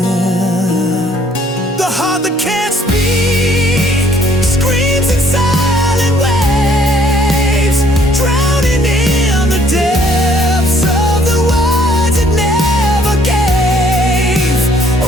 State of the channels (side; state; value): both; normal; correlation 0.62